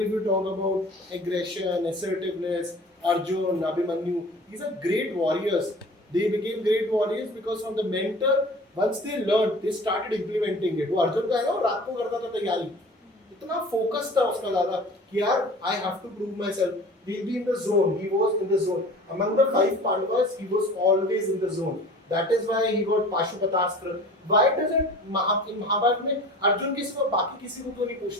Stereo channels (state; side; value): normal; both; correlation 0.42